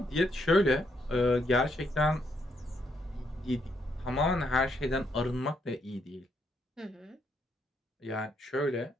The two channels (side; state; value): both; normal; correlation 0.75